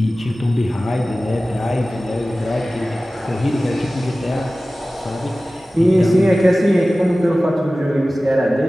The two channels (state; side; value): normal; both; correlation 0.97